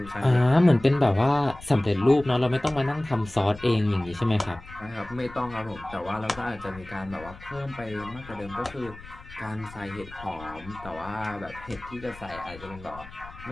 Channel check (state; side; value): noise; left; rumble, 18 dB below the sound